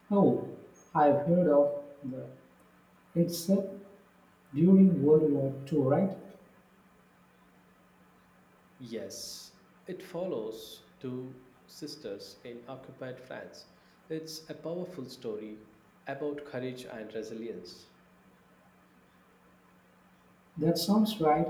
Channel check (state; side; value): identical; both; correlation 1.00